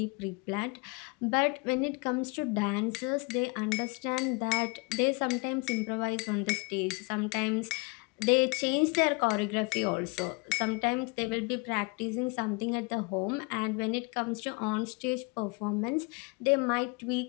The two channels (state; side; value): quieter; right; 28.8 dB